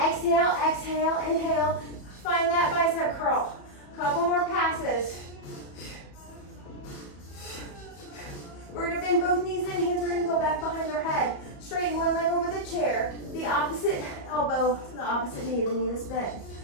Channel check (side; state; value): right; late; 34 ms